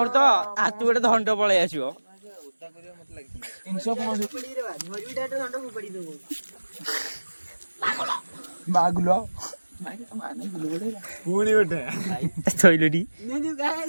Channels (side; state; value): both; inverted; correlation -1.00